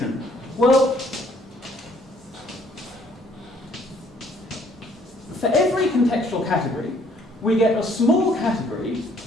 Well, for every contextual category, we get a small category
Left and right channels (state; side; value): normal; both; correlation 0.62